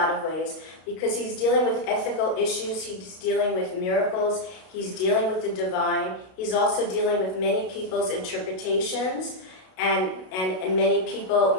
of ways, because he's dealing with ethical issues, he's dealing with miracles, he's dealing with the divine, he's also dealing with many people's interpretations, and many people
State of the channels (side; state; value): right; late; 32 ms